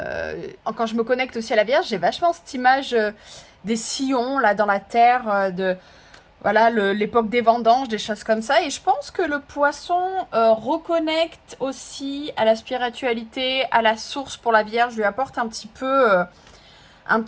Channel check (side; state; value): both; identical; correlation 1.00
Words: je me connecte aussi à la Vierge, j'ai vachement cette image des sillons là dans la terre, de voilà l'époque des vendanges, des choses comme ça, et je pense que le poisson reconnecte aussi à la spiritualité, à la source pour la Vierge, lui apporte un petit peu un